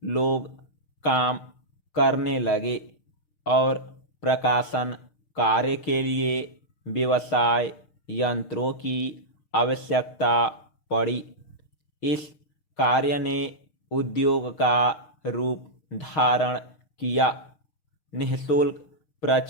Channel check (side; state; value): right; late; 6.5 ms